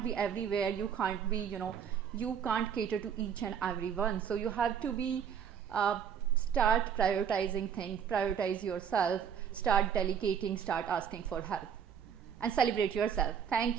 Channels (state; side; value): quieter; left; 7.9 dB